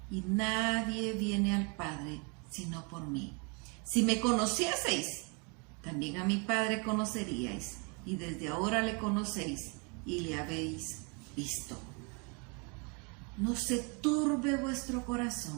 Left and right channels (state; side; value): quieter; left; 33.5 dB